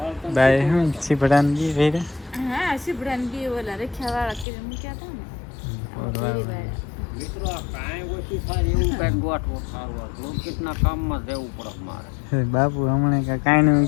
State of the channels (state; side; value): drops out; right; at 4.5 s